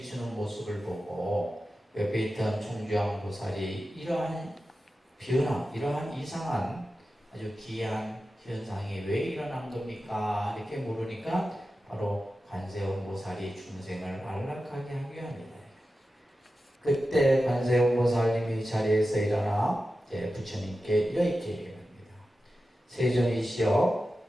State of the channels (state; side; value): normal; both; correlation 0.93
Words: 모습을 보고 옆에 있던 총주왕 보살이 이러한 변화, 이러한 이상한 아주 기이한 현상이 왜 일어난 겁니까? 이렇게 물으니까 바로 관세음 보살이 중생을 안락하게 하기 위함이다. 그때 관세음 보살님이 자리에서 일어나 부처님께 이렇게 얘기합니다. 세존이시여,